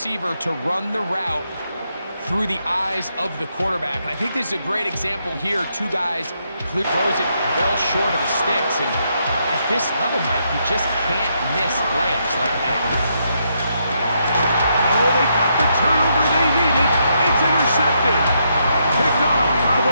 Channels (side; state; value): both; inverted; correlation -0.78